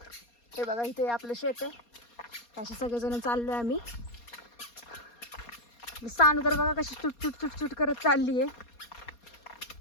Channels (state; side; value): late; right; 4.2 ms